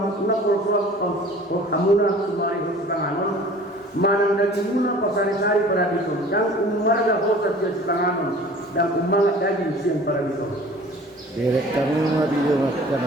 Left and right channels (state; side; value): normal; both; correlation 0.46